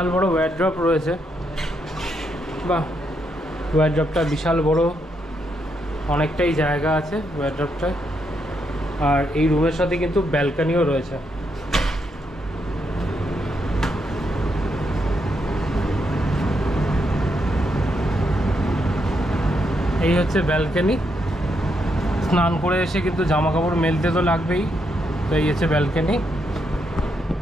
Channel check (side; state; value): both; normal; correlation 0.79